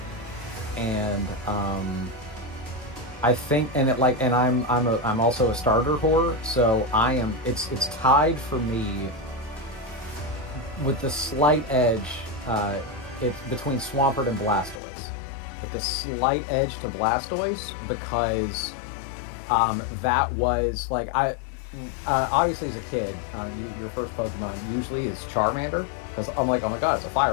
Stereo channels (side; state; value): right; drops out; at 14.8 s